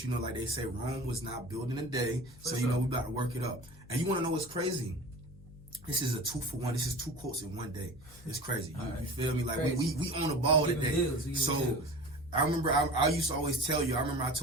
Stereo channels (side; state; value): left; noise; hum, 21 dB below the sound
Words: like they say, Rome was not built in a day. So we about to work it up. And you want to know what's crazy? This is a 2-for-1. This is 2 quotes in one day. It's crazy. You feel me? Like we on the ball today. So. I remember I used to always tell you, I